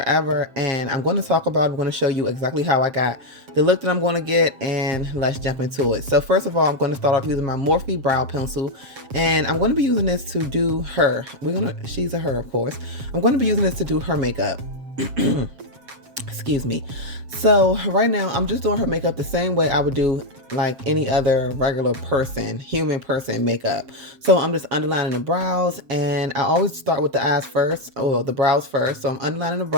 and I'm going to I'm going to show you exactly how I got the look that I'm going to get, and let's jump into it. So first of all, I'm going to start off using my Morphe brow pencil, and I'm going to be using this to do her. She's a her, of course. I'm going to be using this to do her makeup. Excuse me. So right now I'm just doing her makeup the same way I would do like any other regular person, human person makeup. So I'm just underlining the brows, and I always start with the eyes first, or the brows first. So I'm underlining the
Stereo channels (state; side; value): late; left; 7.4 ms